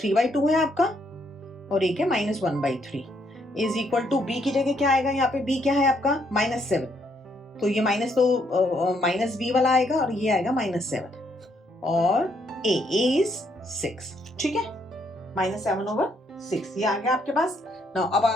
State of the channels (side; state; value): both; normal; correlation 0.72